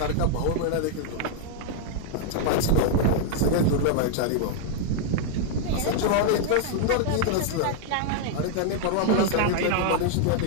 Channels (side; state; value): both; different; correlation 0.00